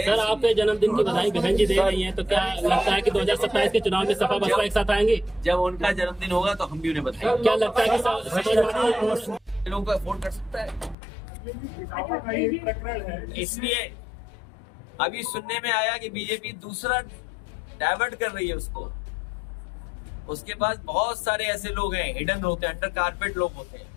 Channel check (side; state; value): right; drops out; at 11.0 s